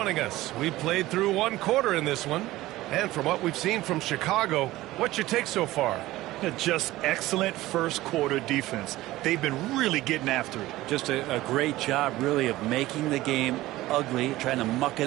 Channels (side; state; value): left; quieter; 17.0 dB